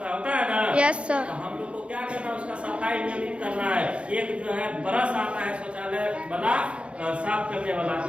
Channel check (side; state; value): left; late; 0.059 ms